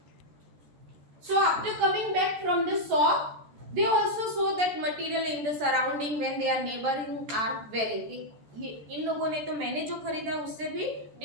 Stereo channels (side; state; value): left; late; 14 ms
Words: So after coming back from the shop, they also saw that material in the surrounding when they are neighboring are wearing. ये इन लोगों ने तो मैंने जो खरीदा उससे भी